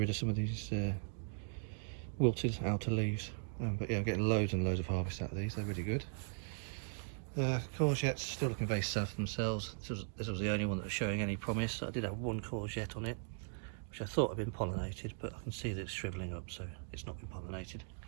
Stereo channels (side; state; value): left; silent; digital silence